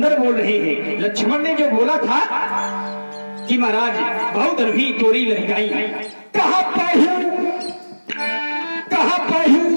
बोल रहे हैं। लक्ष्मण ने जो बोला था कि महाराज बहु धनुही तोड़ी लड़काई, कहा पहु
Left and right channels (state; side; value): inverted; both; correlation -1.00